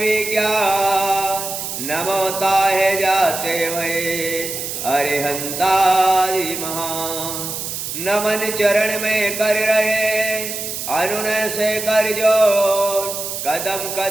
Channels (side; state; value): right; noise; hiss, 6 dB below the sound